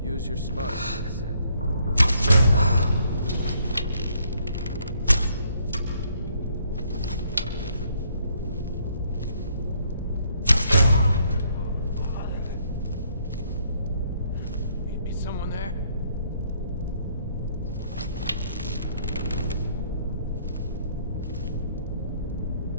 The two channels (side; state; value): both; inverted; correlation -0.68